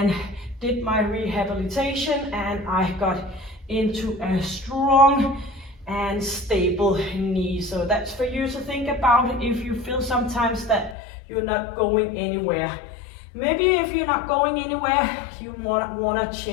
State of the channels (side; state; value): right; drops out; at 11.0 s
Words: did my rehabilitation, and I got into a strong and stable knee. So that's for you to think about if you feel sometimes that you're not going anywhere. Maybe if you're not going anywhere, you want to